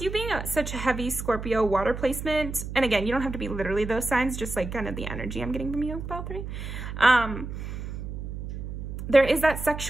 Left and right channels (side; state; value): right; noise; hum, 7 dB below the sound